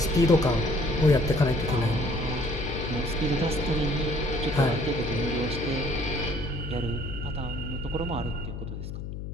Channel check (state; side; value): noise; left; hum, 7 dB below the sound